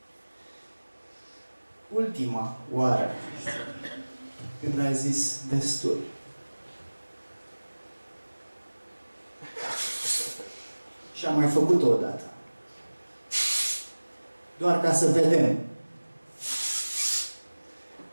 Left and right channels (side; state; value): both; inverted; correlation -1.00